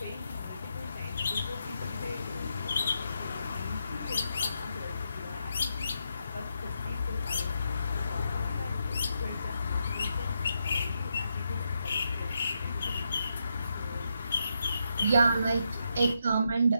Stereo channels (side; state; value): both; inverted; correlation -0.82